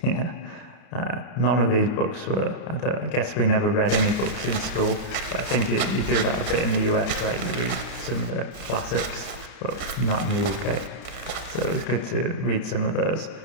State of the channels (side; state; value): right; late; 30 ms